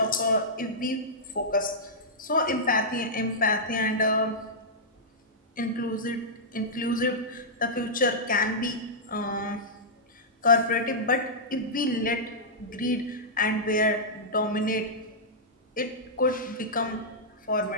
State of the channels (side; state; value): both; normal; correlation -0.12